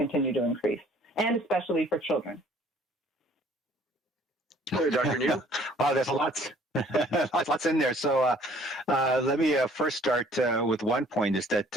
to increase, and especially for children? Dr. New? Wow, there's lots in there. So let me first start with one point, is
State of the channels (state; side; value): normal; both; correlation 0.57